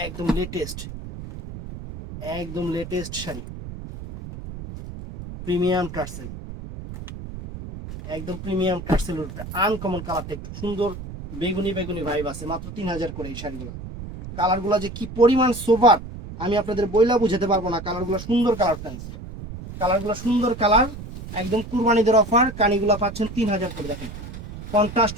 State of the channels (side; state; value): right; noise; rumble, 11 dB below the sound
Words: লেটেস্ট, একদম লেটেস্ট শাড়ি, প্রিমিয়াম টার্সেল, একদম প্রিমিয়াম টার্সেলের উপরে আনকমন কালারটা, একটু সুন্দর বেগুনি বেগুনি ভাইব আছে, মাত্র 3000 করে এই শাড়িগুলো। কালারগুলো যে কি পরিমাণ সোভার, আমি আপনাদের বইলা বুঝাতে পারবো না। কালারগুলো সুন্দর কালার ফ্রেন্ডস, কালারগুলো সুন্দর কালার, একদম কুরবানিদের অফার। কানিগুলো পাচ্ছেন 3000 করে। দেখেন কন্ট্রাস্ট